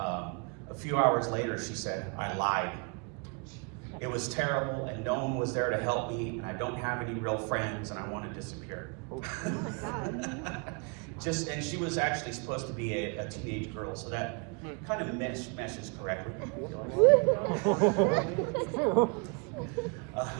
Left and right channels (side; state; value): left; quieter; 34.1 dB